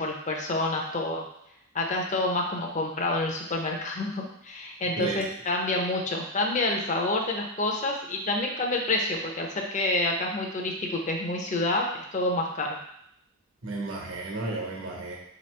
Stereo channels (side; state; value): both; normal; correlation 0.03